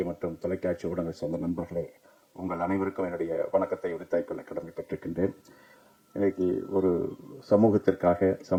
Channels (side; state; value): both; identical; correlation 1.00